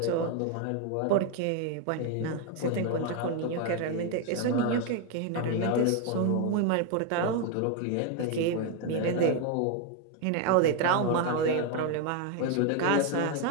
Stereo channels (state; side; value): different; both; correlation 0.01